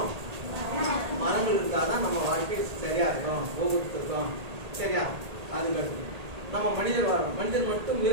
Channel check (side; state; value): left; late; 1.8 ms